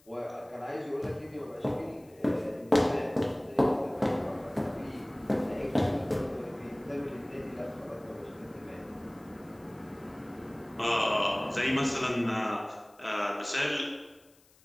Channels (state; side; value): noise; left; hiss, 29 dB below the sound